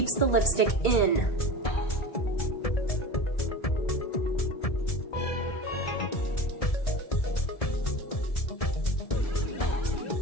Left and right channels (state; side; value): late; right; 1.7 ms